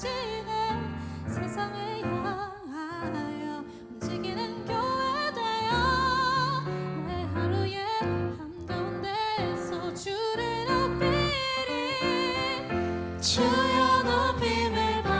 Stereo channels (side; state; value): both; identical; correlation 1.00